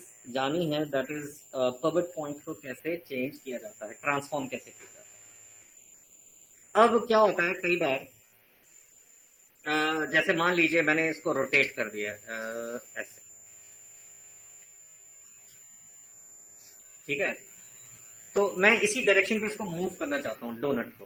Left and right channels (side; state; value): both; identical; correlation 1.00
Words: जानी है, दैट इज पिवट पॉइंट को कैसे चेंज किया जाता है, ट्रांसफॉर्म कैसे किया जाता है। अब क्या होता है कई बार, जैसे मान लीजिए मैंने इसको रोटेट कर दिया ऐसे, ठीक है, तो मैं इसी डायरेक्शन पे इसको मूव करना चाहता हूँ डोनट